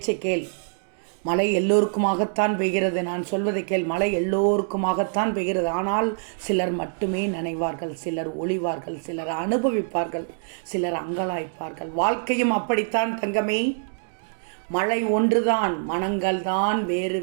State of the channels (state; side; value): silent; left; digital silence